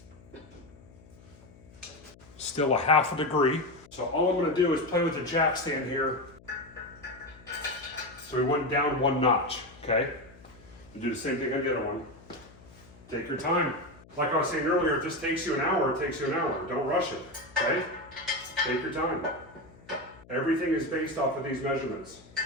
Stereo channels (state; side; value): noise; left; hum, 23 dB below the sound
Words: Still a 1/2 degree. So all I'm gonna do is play with the jack stand here. So we went down 1 notch, okay? And do the same thing on the other one. Take your time. Like I was saying earlier, if this takes you an hour, it takes you an hour. Don't rush it, okay? Take your time. Everything is based off of these measurements.